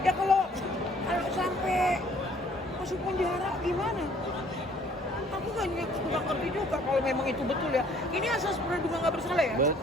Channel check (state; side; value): normal; both; correlation 0.58